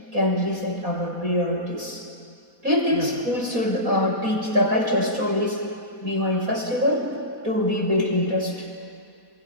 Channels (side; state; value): left; late; 4.1 ms